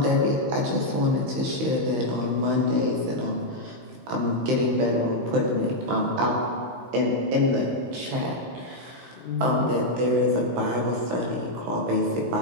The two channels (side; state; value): left; late; 16 ms